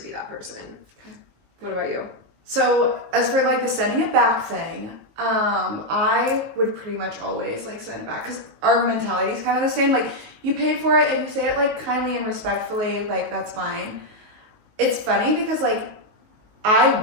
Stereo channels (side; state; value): left; late; 19 ms